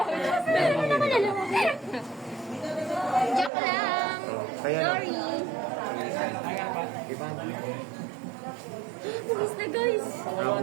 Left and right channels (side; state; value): left; drops out; at 3.5 s